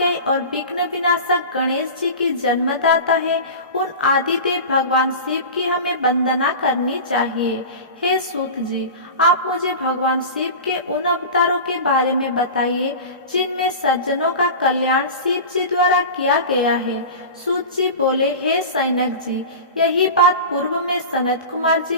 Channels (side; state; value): both; inverted; correlation -0.31